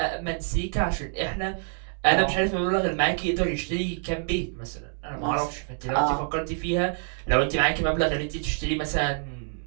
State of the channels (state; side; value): silent; left; 61 dB below the other